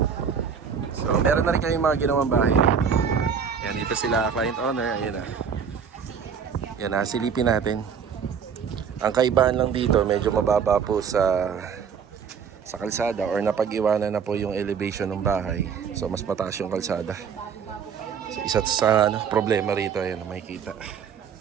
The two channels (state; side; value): quieter; left; 6.9 dB